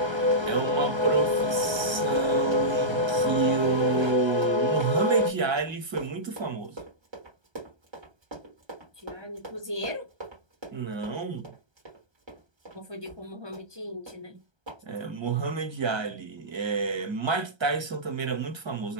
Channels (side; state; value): left; late; 1.3 ms